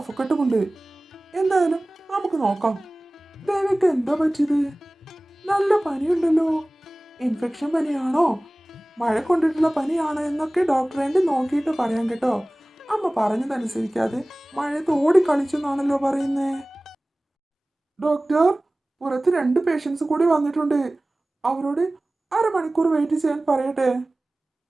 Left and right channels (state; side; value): normal; both; correlation 0.98